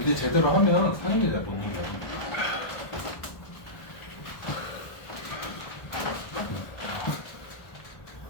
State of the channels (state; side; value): late; right; 1.4 ms